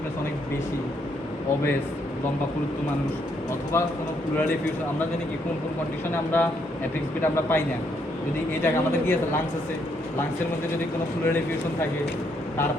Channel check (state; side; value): normal; both; correlation 0.73